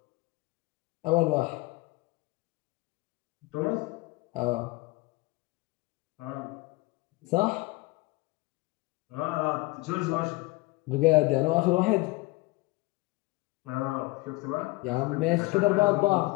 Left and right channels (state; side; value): quieter; right; 22.6 dB